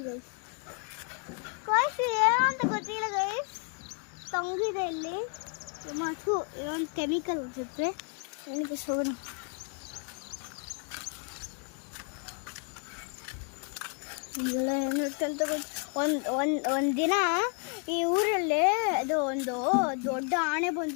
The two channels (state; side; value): quieter; right; 39.7 dB